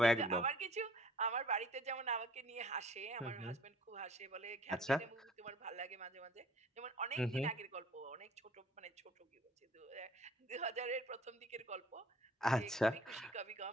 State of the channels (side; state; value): both; normal; correlation 0.52